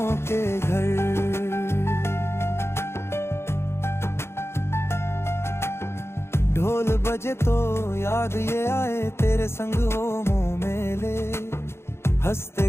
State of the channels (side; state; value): right; late; 0.12 ms